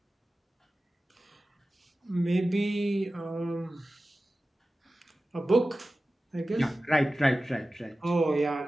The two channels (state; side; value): normal; both; correlation 0.95